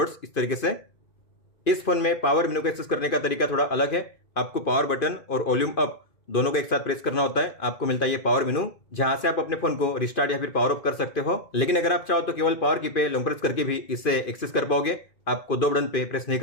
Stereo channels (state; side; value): late; right; 2.5 ms